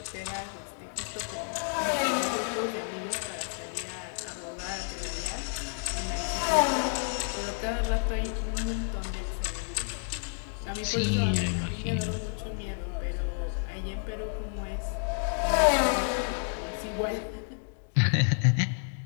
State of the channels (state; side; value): silent; right; 58 dB below the other